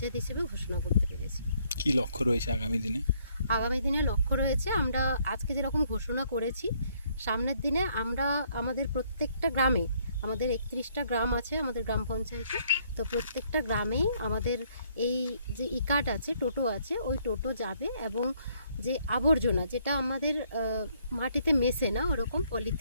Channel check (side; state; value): both; inverted; correlation -0.67